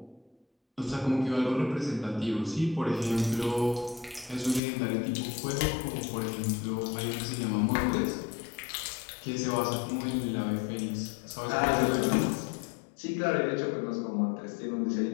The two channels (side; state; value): right; drops out; at 4.6 s